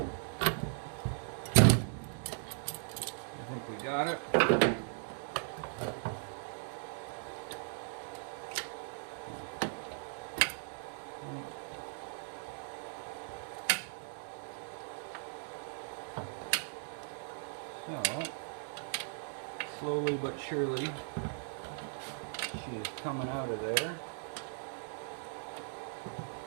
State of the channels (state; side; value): silent; left; digital silence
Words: I think we got it. So, slowly but surely, she is coming out of there.